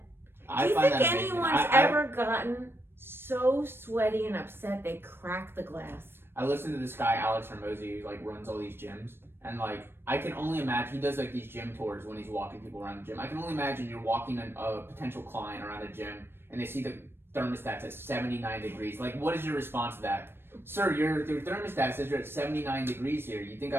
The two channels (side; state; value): left; late; 0.11 ms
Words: Do you think anyone's ever gotten so sweaty and upset they crack the glass? I listened to this guy Alex Hermosi who like runs all these gyms, and like I can only imagine he does like these gym tours when he's walking people around the gym. I can only imagine you're walking a potential client around a gym and they see the thermostat's at 79 degrees. Like, what is your response to that? Sir, your thermostat says you're at 79 degrees here. You think